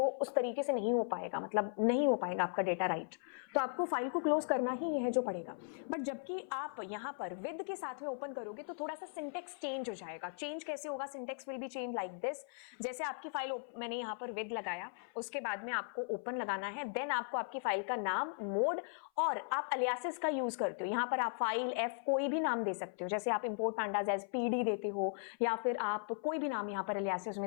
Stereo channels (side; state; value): right; silent; 53 dB below the other